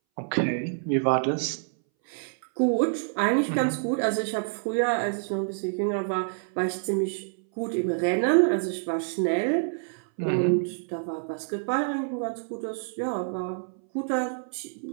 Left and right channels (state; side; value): silent; left; 60 dB below the other